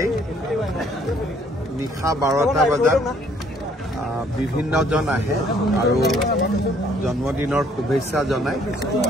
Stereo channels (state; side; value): normal; both; correlation 0.63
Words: নিশা 12টা বজাত বিভিন্নজন আহে আৰু জন্মদিনৰ শুভেচ্ছা জনায়।